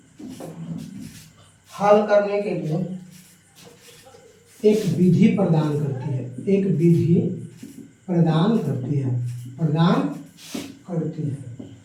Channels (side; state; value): both; identical; correlation 1.00